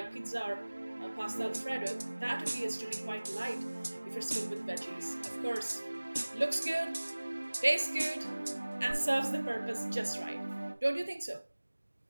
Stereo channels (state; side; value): inverted; both; correlation -1.00